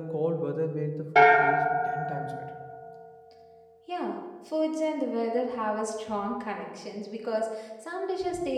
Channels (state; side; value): identical; both; correlation 1.00